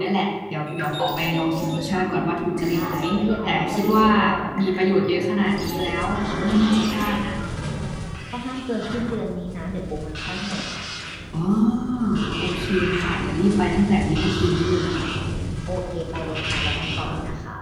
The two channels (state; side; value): identical; both; correlation 1.00